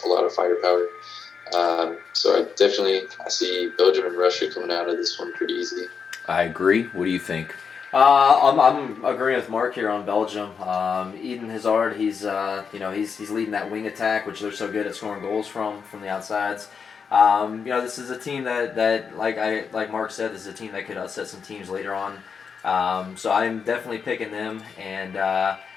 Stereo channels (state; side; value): quieter; right; 6.1 dB